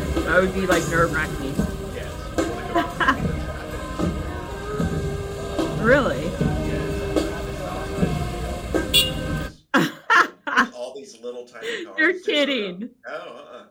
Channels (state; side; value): identical; both; correlation 1.00